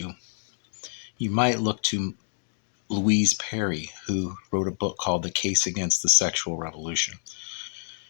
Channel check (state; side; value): silent; right; digital silence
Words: you might look to Louise Perry, who wrote a book called The Case Against the Sexual Revolution.